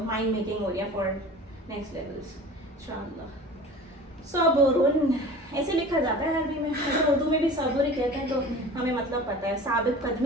مائنڈ میکنگ ہو رہی ہے فار نیکسٹ لیولس انشاءاللہ. صبرن ایسے لکھا جاتا ہے عربی میں, اردو میں بھی صبر ہی کہتے ہیں, تو ہمیں مطلب پتہ ہے. ثابت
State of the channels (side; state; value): both; normal; correlation 0.40